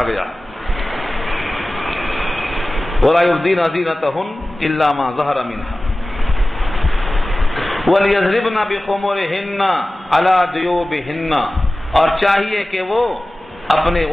گیا وَلَا يُبْدِينَ زِينَتَهُنَّ إِلَّا مَا ظَهَرَ مِنْهَا وَلْيَضْرِبْنَ بِخُمُرِهِنَّ عَلَى جُيُوبِهِنَّ. اور چاہیے کہ وہ اپنے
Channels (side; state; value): both; normal; correlation 0.96